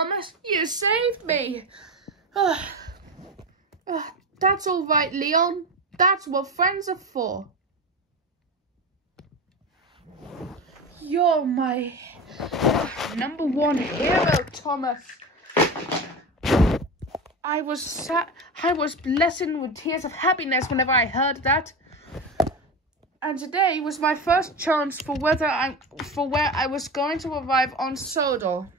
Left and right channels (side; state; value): both; normal; correlation 0.24